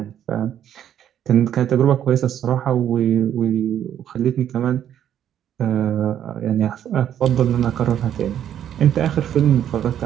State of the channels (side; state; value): left; quieter; 10.2 dB